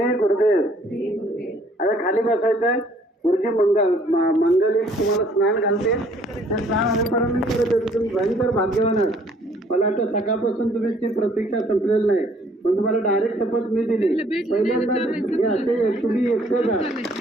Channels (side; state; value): both; normal; correlation 0.61